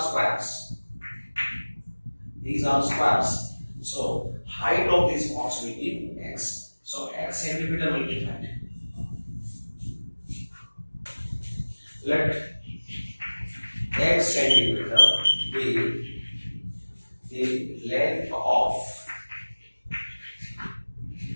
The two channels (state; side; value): inverted; both; correlation -1.00